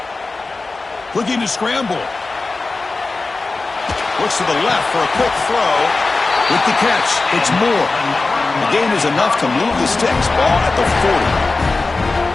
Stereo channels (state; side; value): quieter; right; 3.6 dB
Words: Looking to scramble. Looks to the left for a quick throw. With the catch, it's Moore. The gain is enough to move the sticks. Ball at the 40.